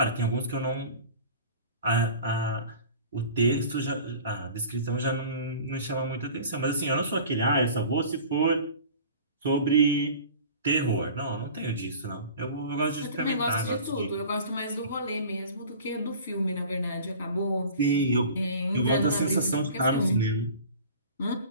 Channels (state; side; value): inverted; both; correlation -0.41